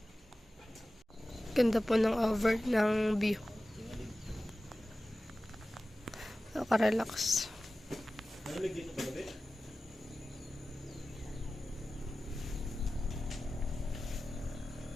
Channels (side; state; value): both; normal; correlation 0.95